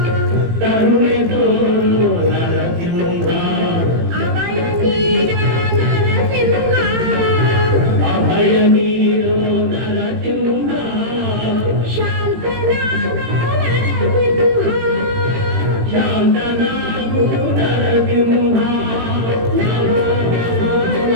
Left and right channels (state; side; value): late; left; 18 ms